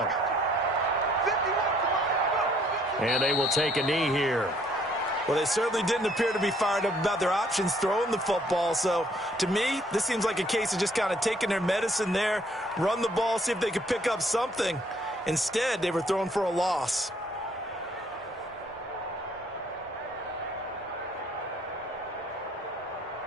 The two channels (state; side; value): normal; both; correlation 0.64